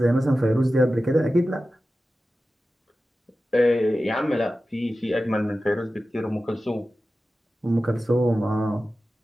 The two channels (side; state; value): both; normal; correlation 0.94